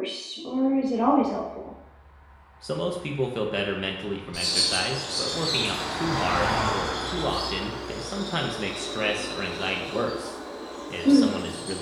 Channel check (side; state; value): both; identical; correlation 1.00